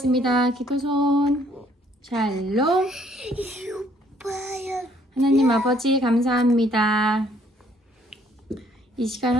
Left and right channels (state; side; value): normal; both; correlation 0.64